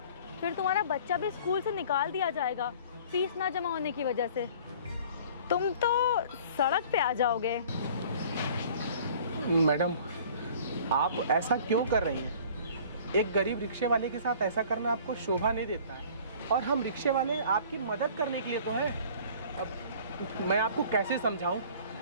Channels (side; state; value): both; inverted; correlation -0.48